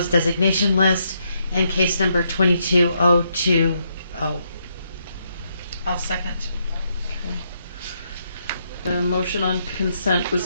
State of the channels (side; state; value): both; inverted; correlation -0.77